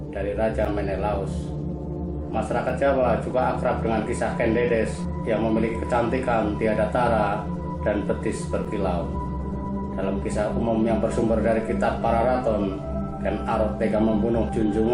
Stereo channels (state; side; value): identical; both; correlation 1.00